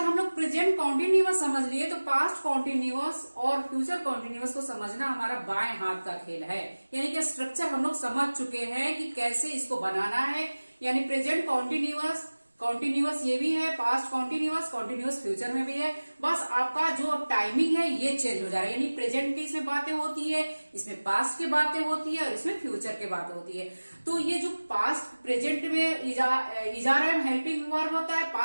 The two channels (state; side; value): inverted; both; correlation -1.00